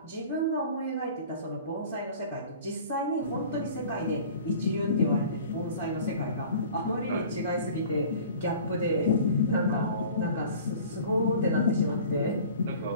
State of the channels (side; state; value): both; inverted; correlation -0.45